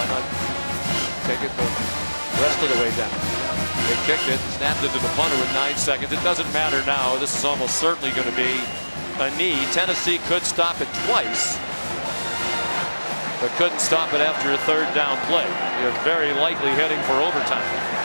not take it the rest of the way down? They kicked it, snapped it to the punter with 9 seconds. It doesn't matter now. This is almost certainly going to be a knee. Tennessee could stop it twice, but couldn't stop it after a 3rd down play. You're very likely heading for overtime.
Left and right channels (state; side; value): inverted; both; correlation -1.00